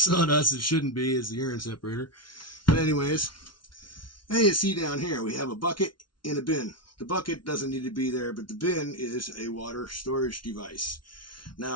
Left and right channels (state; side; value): late; right; 0.73 ms